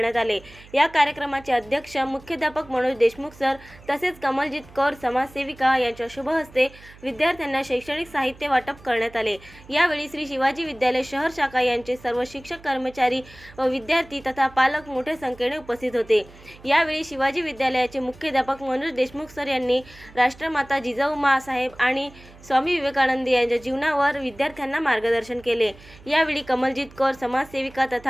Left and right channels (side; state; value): right; noise; hum, 22 dB below the sound